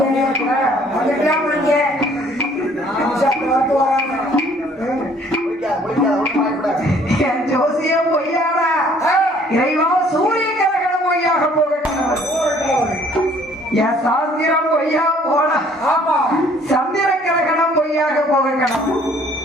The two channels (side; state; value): both; normal; correlation 0.58